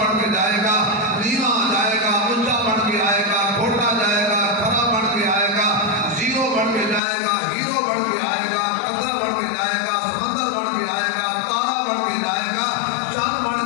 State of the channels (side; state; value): right; drops out; at 7.0 s